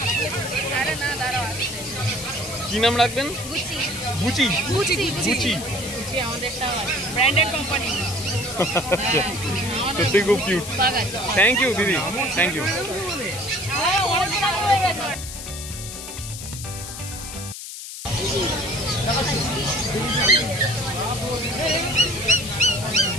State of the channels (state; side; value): noise; left; hiss, 10 dB below the sound